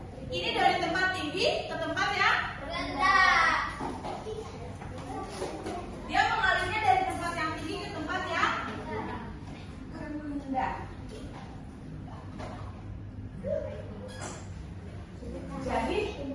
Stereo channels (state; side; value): identical; both; correlation 1.00